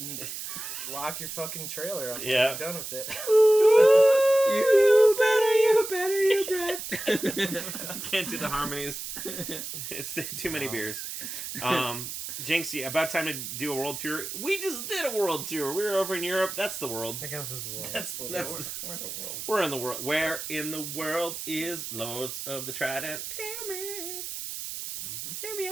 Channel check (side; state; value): right; noise; hiss, 7 dB below the sound